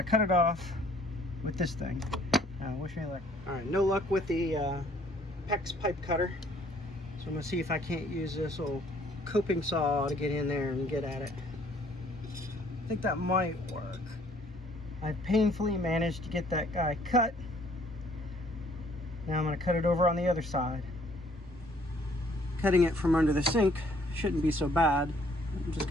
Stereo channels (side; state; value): both; normal; correlation 0.61